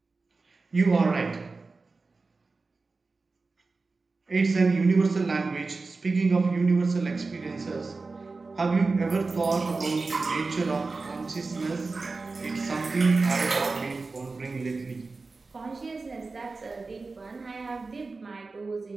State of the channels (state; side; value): quieter; left; 3.9 dB